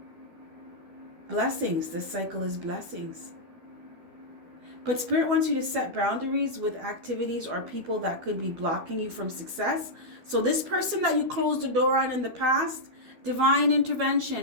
Blessings. This cycle is blessings. But Spirit wants you to set boundaries with activities or people that could be blocking you from success. So this person that you closed the door on in the past, divine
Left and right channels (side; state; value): left; late; 12 ms